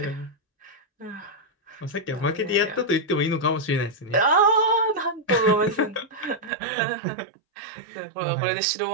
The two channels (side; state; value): left; drops out; at 6.5 s